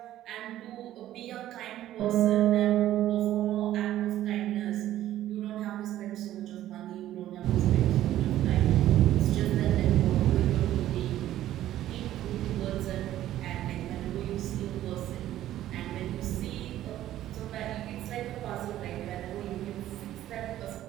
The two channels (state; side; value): quieter; left; 13.2 dB